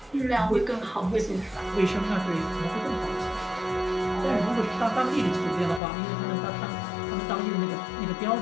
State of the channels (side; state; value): right; drops out; at 5.8 s